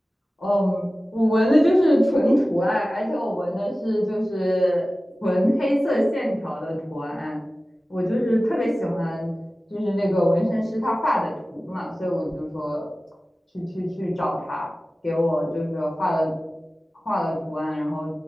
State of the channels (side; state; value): both; normal; correlation 0.96